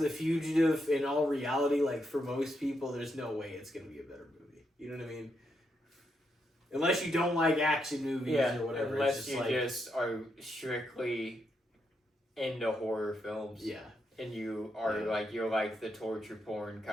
The Fugitive, in all reality, like for most people, there's no way it's going to be a better movie. You know what I mean? Unless you don't like action movies or whatever. Unless it's you like, just are strictly into horror films. yeah. And you are Yeah. like, you're like the torture porn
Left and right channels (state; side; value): normal; both; correlation 0.81